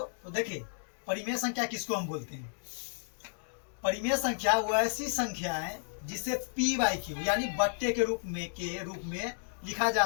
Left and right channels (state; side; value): silent; right; 56 dB below the other